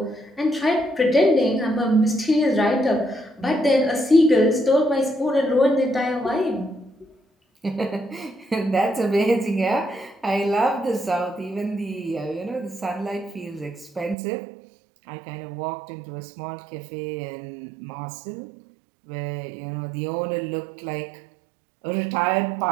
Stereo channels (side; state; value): left; drops out; at 14.2 s